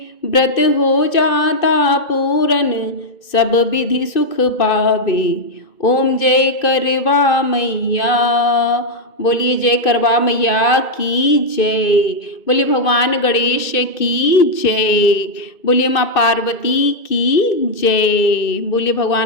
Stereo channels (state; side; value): late; right; 2.6 ms